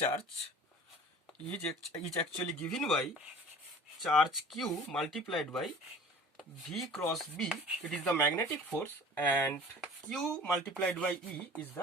is actually given by charge Q multiplied by V cross B. It is the magnetic force, and Q multiplied by E is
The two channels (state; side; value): normal; both; correlation 0.43